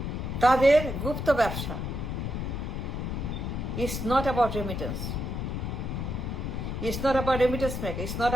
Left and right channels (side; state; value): left; noise; rumble, 3 dB below the sound